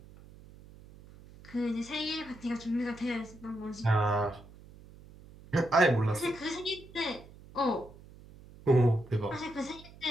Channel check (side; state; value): right; noise; hum, 20 dB below the sound